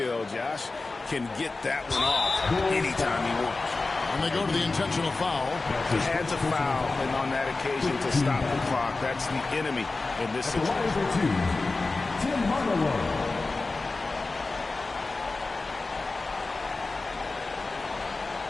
Josh can get that one off anytime he wants. And they go to the intentional foul. He had to foul, and on that occasion to stop the clock. That's the enemy in this situation. Tim Hardaway.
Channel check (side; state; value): right; quieter; 3.5 dB